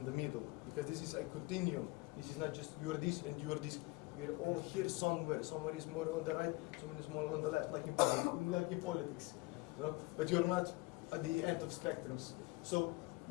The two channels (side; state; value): right; quieter; 22.9 dB